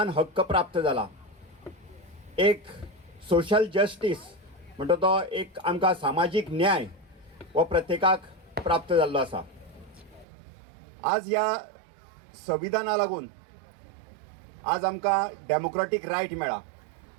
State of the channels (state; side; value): drops out; left; at 10.2 s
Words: हक्क प्राप्त जाला, एक सोशल जस्टीस म्हणटा तो एक आमकां सामाजीक न्याय हो प्रत्येकाक प्राप्त जाल्लो आसा। आज ह्या संविधाना लागून आज आमकां डेमोक्रेटीक रायट मेळ्ळा।